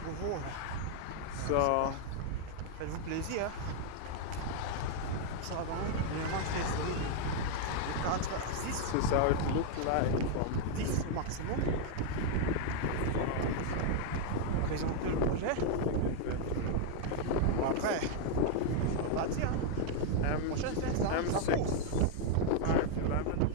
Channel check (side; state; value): both; different; correlation 0.00